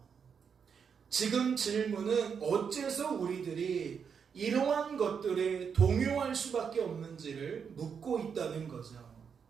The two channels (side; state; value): left; quieter; 6.7 dB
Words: 지금 질문은 어째서 우리들이 이러한 것들에 동요할 수밖에 없는지를 묻고 있다는 거죠.